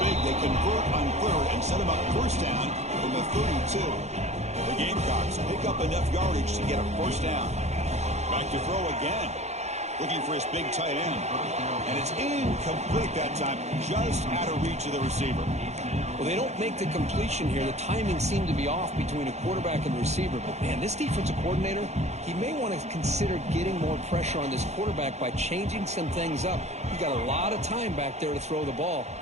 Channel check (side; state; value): left; late; 0.32 ms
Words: They convert on third and set him up first down from the 32. The Gamecocks pick up enough yardage to get a first down. Back to throw again. Looking for his big tight end. And it's incomplete that time, just out of reach of the receiver. Well, they don't make the completion here. The timing seemed to be off between a quarterback and the receiver. But, man, this defensive coordinator, he may want to consider getting more pressure on this quarterback by changing some things up. He's got a lot of time back there to throw the ball.